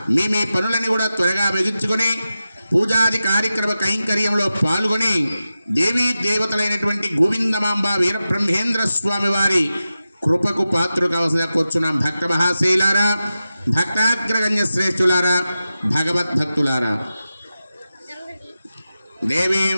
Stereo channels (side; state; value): both; inverted; correlation -0.93